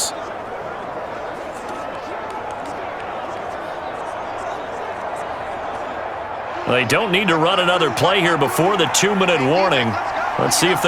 They don't need to run another play here before the 2-minute warning. Let's see if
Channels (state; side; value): identical; both; correlation 1.00